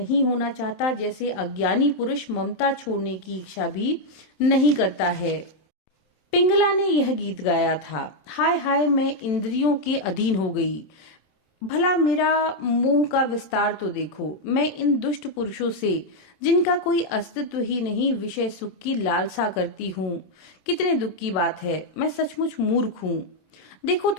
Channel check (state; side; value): late; right; 27 ms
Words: होना चाहता जैसे अज्ञानी पुरुष ममता छोड़ने की इच्छा भी नहीं करता है। पिंगला ने यह गीत गाया था। हाय हाय, मैं इंद्रियों के अधीन हो गई। भला मेरा मोह का विस्तार तो देखो। मैं इन दुष्ट पुरुषों से, जिनका कोई अस्तित्व ही नहीं, विषय सुख की लालसा करती हूँ। कितने दुख की बात है। मैं सचमुच मूर्ख हूँ। देखो